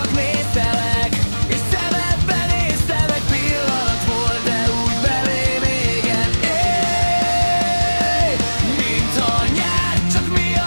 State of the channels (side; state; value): both; inverted; correlation -1.00